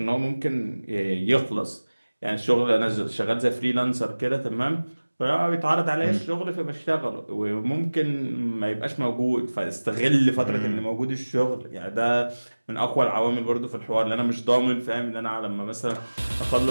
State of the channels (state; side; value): inverted; both; correlation -1.00